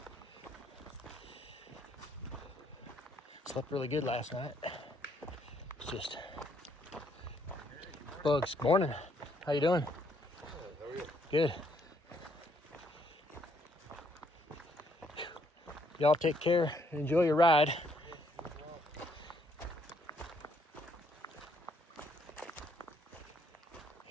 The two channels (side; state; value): both; normal; correlation 0.70